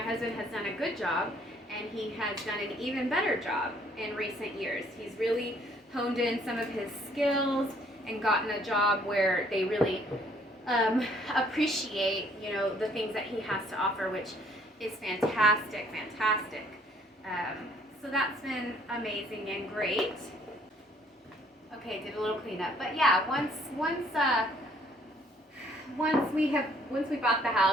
has done a good job, and he has done an even better job in recent years. He's really honed in some of his skills and gotten a job where they really appreciate, the things that he has to offer, which is fantastic. So that's been amazing and great. Okay, did a little cleanup, but yeah, once we bought the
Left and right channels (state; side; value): normal; both; correlation 0.62